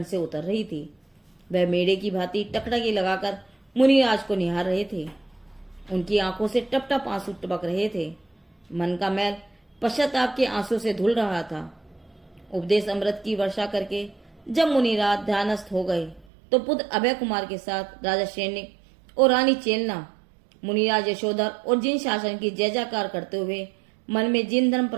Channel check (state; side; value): drops out; left; at 16.2 s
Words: से उतर रही थी। वह मेढ़े की भांति टकटकी लगाकर मुनिराज को निहार रहे थे। उनकी आंखों से टप टप आंसू टपक रहे थे। मन का मैल पश्चाताप के आंसू से धुल रहा था। उपदेश अमृत की वर्षा करके जब मुनिराज ध्यानस्थ हो गए, तो पुत्र अभय कुमार के साथ राजा सैनिक और रानी चेलना मुनिराज यशोधर और जिन शासन की जय जयकार करते हुए मन में जिन धर्म